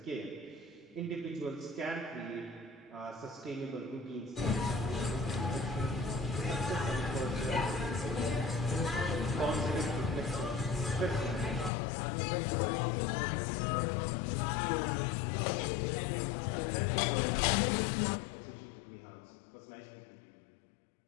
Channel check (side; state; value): right; drops out; at 11.7 s